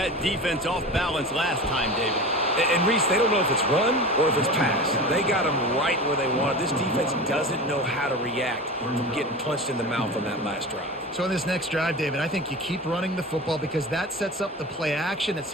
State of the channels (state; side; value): normal; both; correlation 0.31